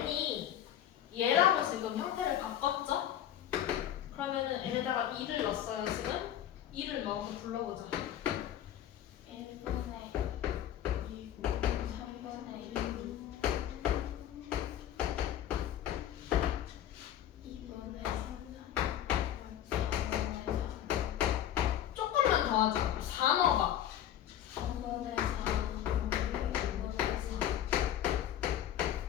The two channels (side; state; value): right; quieter; 11.2 dB